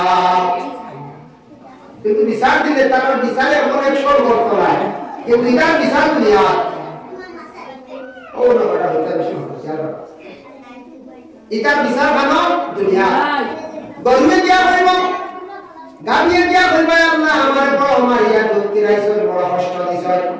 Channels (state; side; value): identical; both; correlation 1.00